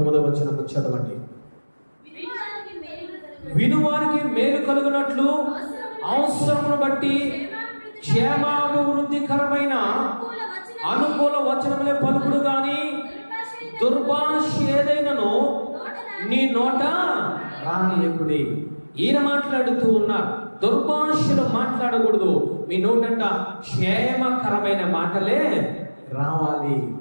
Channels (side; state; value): both; inverted; correlation -1.00